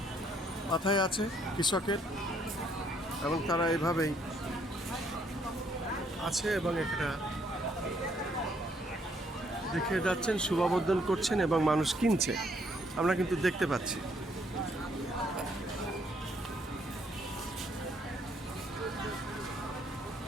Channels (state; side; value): normal; both; correlation 0.68